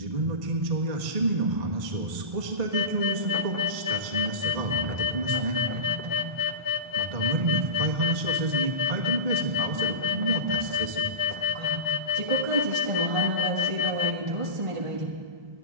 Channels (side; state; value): left; late; 1.9 ms